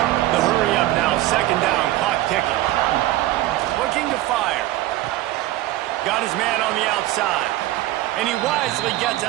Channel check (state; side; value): quieter; left; 15.8 dB